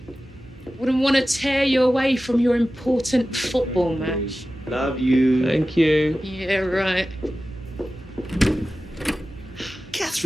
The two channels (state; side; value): normal; both; correlation 0.95